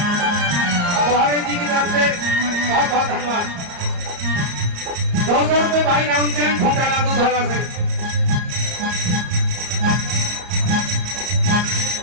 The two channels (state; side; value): late; left; 34 ms